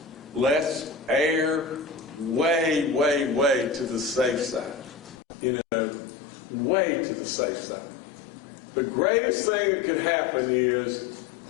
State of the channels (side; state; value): right; drops out; at 5.2 s